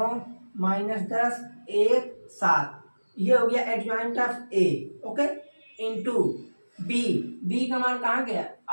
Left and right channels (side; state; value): both; inverted; correlation -1.00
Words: -10 1 7। ये हो गया adjoint of A. Okay, into B का मान कहाँ गया?